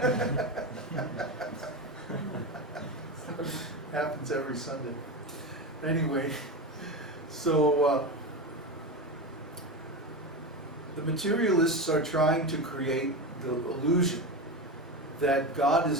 Happens every Sunday. Anyway, so the materialists are trying to create the illusion that God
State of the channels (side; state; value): both; normal; correlation 0.21